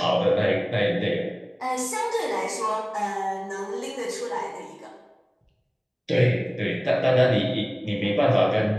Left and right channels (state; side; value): identical; both; correlation 1.00